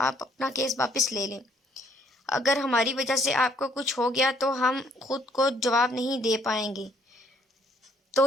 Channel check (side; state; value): both; normal; correlation 0.64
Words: اپنا کیس واپس لے لیں، اگر ہماری وجہ سے آپ کو کچھ ہو گیا تو ہم خود کو جواب نہیں دے پائیں گے۔